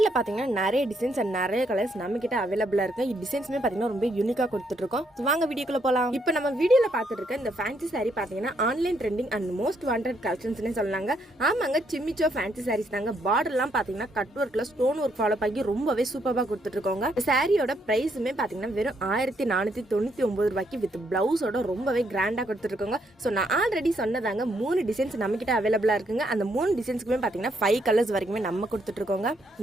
பார்த்தீங்கன்னா நிறைய டிசைன்ஸ் அண்ட் நிறைய கலர்ஸ் நம்மகிட்ட அவைலபிளாக இருக்கு. இந்த டிசைன்ஸுமே பார்த்தீங்கன்னா ரொம்ப யூனிக்காக கொடுத்துட்ருக்கோம். ஸோ வாங்க வீடியோக்குள்ள போகலாம். இப்போ நம்ம வீடியோவில் பார்த்துட்டு இருக்க இந்த ஃபேன்சி சாரீ பார்த்தீங்கன்னா online trending and most wanted கலெக்ஷன்ஸ்னே சொல்லலாங்க. ஆமாங்க, சிம்மிச்சோ ஃபேன்சி சாரீஸ் தாங்க. பார்டர்லாம் பார்த்தீங்கன்னா கட் ஒர்க்கில் ஸ்டோன் ஒர்க் ஃபாலோ பண்ணி ரொம்பவே சூப்பராக கொடுத்துட்ருக்கோங்க. சாரியோட ப்ரைஸுமே பார்த்தீங்கன்னா வெறும் 1499 ரூபாய்க்கு வித் பிளவுஸோட ரொம்பவே கிராண்டாக கொடுத்துருக்கோங்க. ஸோ நான் ஆல்ரெடி சொன்னதாங்க 3 டிசைன்ஸ் நம்ம கிட்ட அவைலபிளா இருக்குங்க. அந்த 3 டிசைன்ஸ்க்குமே பார்த்தீங்கன்னா 5 கலர்ஸ் வரைக்குமே நம்ம கொடுத்துட்டு இருக்கோங்க.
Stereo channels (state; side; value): normal; both; correlation 0.74